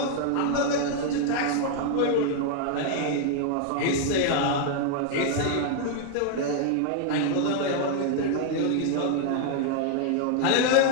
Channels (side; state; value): both; different; correlation 0.00